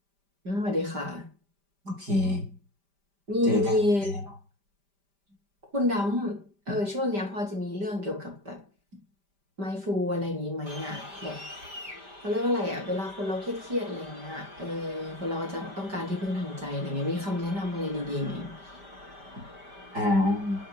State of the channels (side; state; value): left; late; 5.1 ms